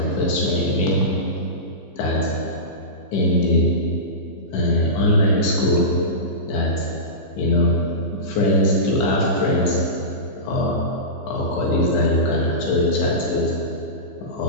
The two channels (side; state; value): right; late; 15 ms